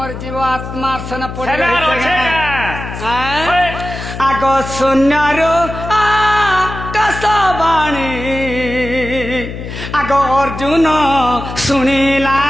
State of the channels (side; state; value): left; noise; hum, 9 dB below the sound